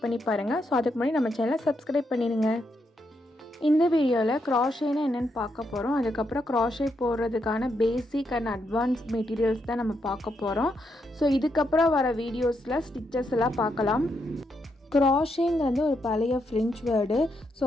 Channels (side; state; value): both; normal; correlation 0.80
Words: பண்ணி பாருங்க. சோ அதுக்கு முன்னாடி நம்ம சேனலை சப்ஸ்கிரைப் பண்ணிடுங்க. இந்த வீடியோல crochetனா என்னன்னு பார்க்க போறோம். அதுக்கு அப்புறம் crochet போடுறதுக்கான பேசிக் அண்ட் அட்வான்ஸ் மெட்டீரியல்ஸ் தான் நம்ம பார்க்க போறோம். சோ இதுக்கு அப்புறம் வர வீடியோஸ்ல ஸ்டிச்சஸ் எல்லாம் பார்க்கலாம். crochetங்கிறது ஒரு பழைய ஃப்ரெஞ்ச் வேர்டு. ஸோ